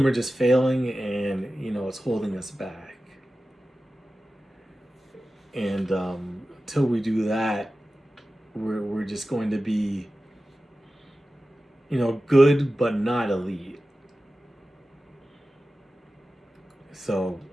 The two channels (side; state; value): both; normal; correlation 0.95